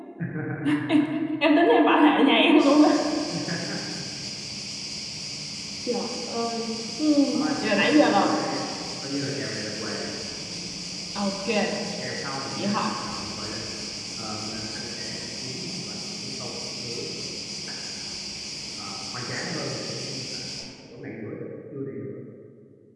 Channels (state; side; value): identical; both; correlation 1.00